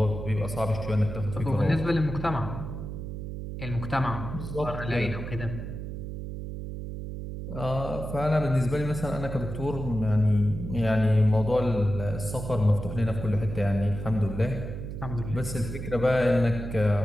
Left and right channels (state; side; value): noise; right; hum, 7 dB below the sound